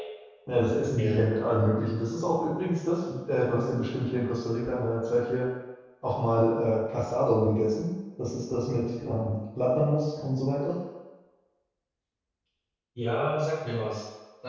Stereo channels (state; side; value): identical; both; correlation 1.00